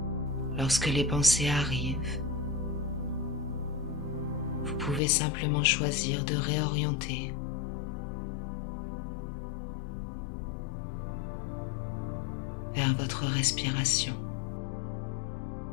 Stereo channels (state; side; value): drops out; right; at 5.0 s